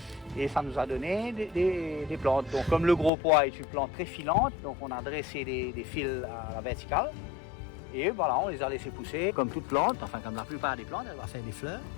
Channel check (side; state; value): right; drops out; at 3.1 s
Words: et ça nous a donné des plantes. Donc comme le gros pois est une plante très filante, donc on a dressé des fils à la verticale. Et voilà, on les a laissés pousser comme toute plante, enfin comme la plupart des plantes, elle va faire des fleurs.